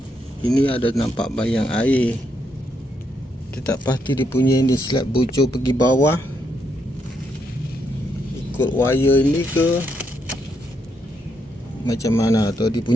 ini ada nampak bayang air. Kita tak pasti dia punya ini slab bocor pergi bawah ikut wire ini ke macam mana, atau dia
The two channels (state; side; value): normal; both; correlation 0.78